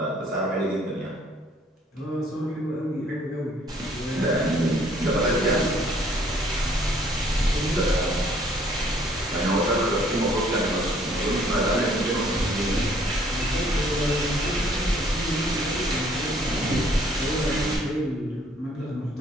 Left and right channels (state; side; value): normal; both; correlation 0.61